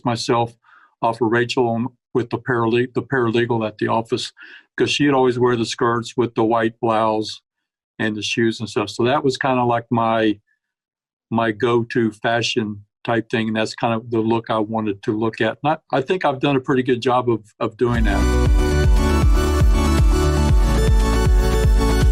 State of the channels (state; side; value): identical; both; correlation 1.00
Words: myself off of Rachel with the paralegal at the office, because she'd always wear the skirts with the white blouse and the shoes and stuff. So that was kind of like my go-to fashion type thing, and that's kind of the look I wanted to look at. And I think I've done a pretty good job of doing that.